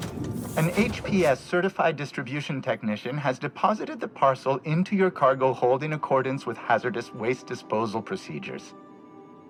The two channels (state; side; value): identical; both; correlation 1.00